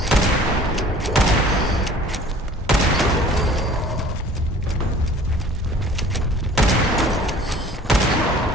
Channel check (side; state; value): both; normal; correlation 0.49